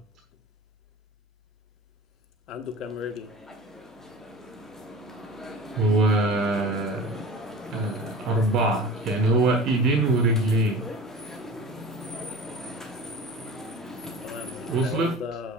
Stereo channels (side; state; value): both; normal; correlation 0.37